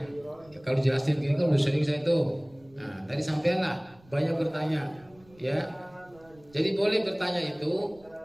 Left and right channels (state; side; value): noise; right; rumble, 27 dB below the sound